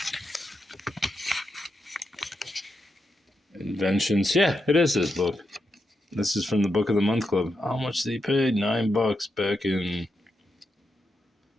Inventions. Yeah, it is this book. This is from the Book of the Month Club. How much did he pay? $9 back in...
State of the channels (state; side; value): normal; both; correlation 0.85